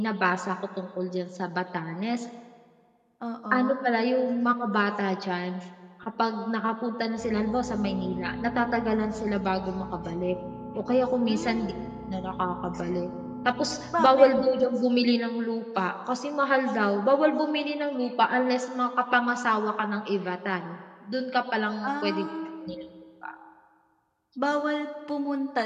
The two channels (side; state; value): both; identical; correlation 1.00